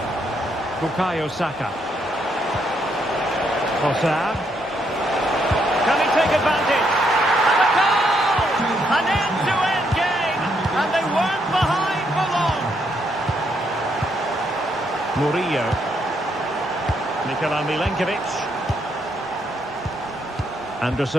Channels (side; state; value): both; normal; correlation 0.75